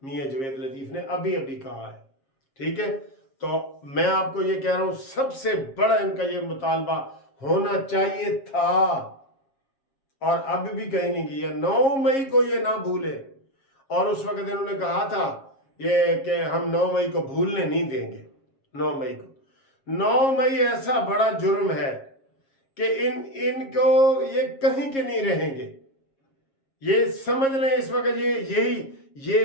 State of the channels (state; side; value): late; right; 7.4 ms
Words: मियां जवेद लतीफ़ ने अभी कहा है, ठीक है। तो मैं आपको ये कह रहा हूं, सबसे बड़ा इनका ये मुतालबा होना चाहिए था और अब भी कहीं नहीं किया। 9 मई को ये ना भूले, और उस वक्त इन्होंने कहा था ये कि हम 9 मई को भूलने नहीं देंगे। 9 मई को, 9 मई ऐसा बड़ा जुर्म है कि इनको ये कहीं के नहीं रहेंगे। ये समझ लें इस वक्त ये